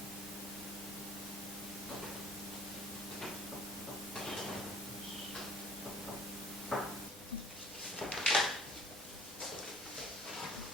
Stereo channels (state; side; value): normal; both; correlation 0.51